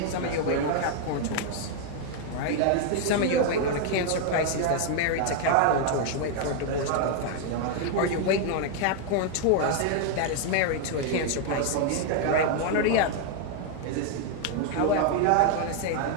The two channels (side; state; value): both; different; correlation 0.00